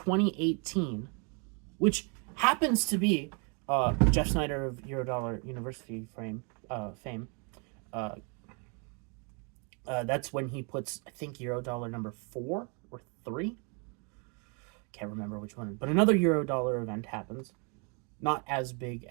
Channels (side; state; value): left; quieter; 35.7 dB